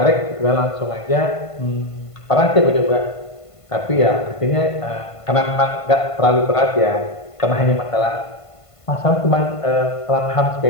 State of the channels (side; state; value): right; late; 1.5 ms